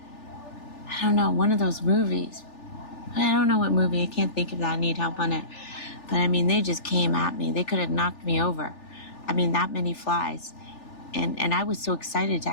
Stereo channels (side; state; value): right; late; 3.4 ms